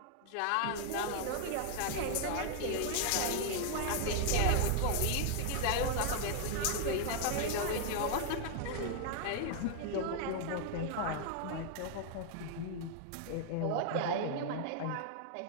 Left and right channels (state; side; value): different; both; correlation 0.00